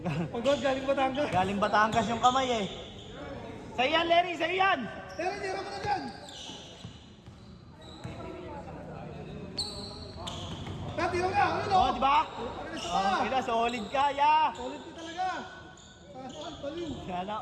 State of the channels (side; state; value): both; identical; correlation 1.00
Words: Pagod, galing Batangas. Galing Batangas yung kamay eh. Sa'yo yan, Larry! Sa'yo yan! Pero tira mo na dyan. Tira nga, ano? Oh, di ba? Ano Oh, kaya solid ka, ya! Solid ka talaga. Saan, baliw.